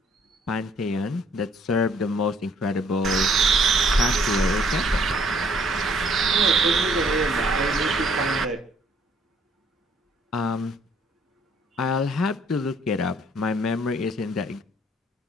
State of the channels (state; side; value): normal; both; correlation 0.62